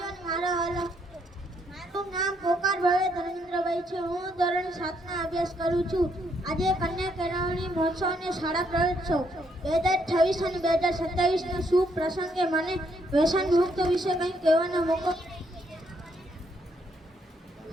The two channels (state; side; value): normal; both; correlation 0.73